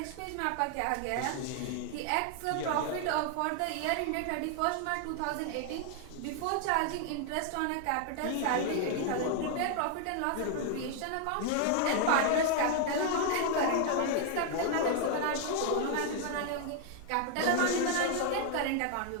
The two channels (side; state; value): both; different; correlation 0.00